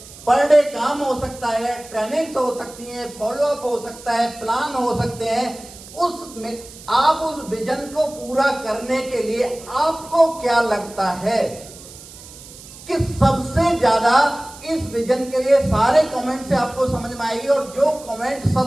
पर डे काम हो सकता है, ट्रेनिंग्स हो सकती है, फॉलोअप हो सकता है, प्लान हो सकते हैं। उसमें आप उस विजन को पूरा करने के लिए आपको क्या लगता है कि सबसे ज्यादा इस विजन के लिए? सारे कमेंट से आपको समझ में आएगी, और जो कमेंट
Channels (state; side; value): noise; right; hiss, 18 dB below the sound